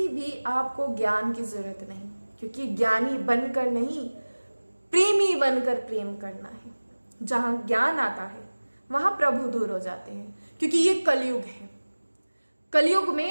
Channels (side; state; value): both; inverted; correlation -1.00